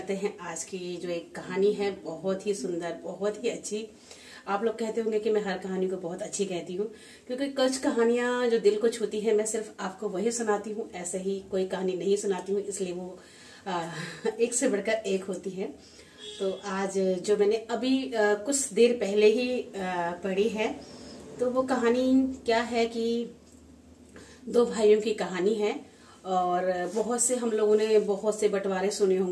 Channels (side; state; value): both; identical; correlation 1.00